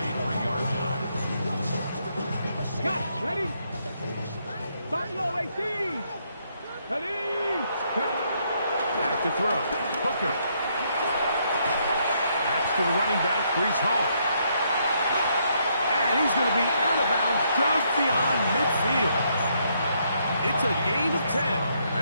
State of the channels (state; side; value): inverted; both; correlation -0.73